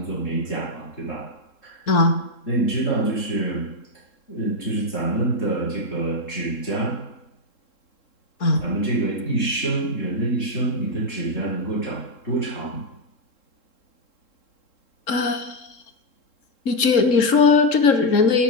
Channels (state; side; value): late; right; 3.7 ms